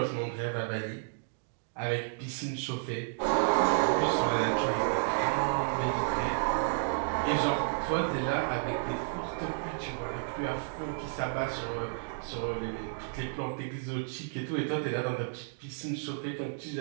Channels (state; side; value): silent; left; digital silence